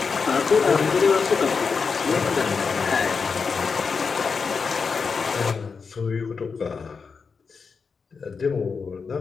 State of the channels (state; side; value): quieter; right; 5.3 dB